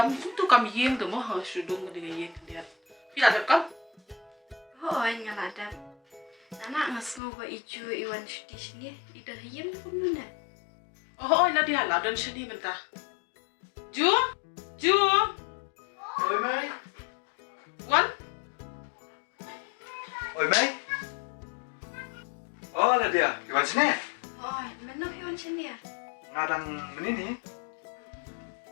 tu kam yeng tu mah sudung dengan yeng dia. Bila ada kam? Hoy ngaladap. Anak ngasngo ba ijo iwan shudi sini ida hayang pun mana. Oh, lah dia lah dan sini mentah. Ju? Ju? Oi Mai. Wan? Oi Mai. Oh lah dia, iwan sini. Hoy, mana iwan sini ya? Ngadang menini.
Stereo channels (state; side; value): drops out; right; at 7.2 s